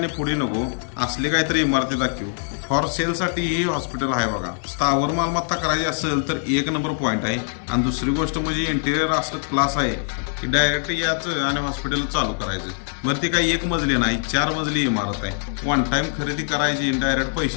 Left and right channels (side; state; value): right; silent; digital silence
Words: पुढे नको, असली काहीतरी इमारती दाखवू। फॉर सेलसाठी ही हॉस्पिटल आहे बघा, स्थावर मालमत्ता करायची असेल तर एक नंबर पॉईंट आहे। आणि दुसरी गोष्ट म्हणजे इंटेरियर असं क्लास आहे की डायरेक्ट याचं आणि हॉस्पिटल चालू करायचं। बरं ती काही एक मजली नाही 4 मजली इमारत आहे। वन टाइम खरेदी करायची, डायरेक्ट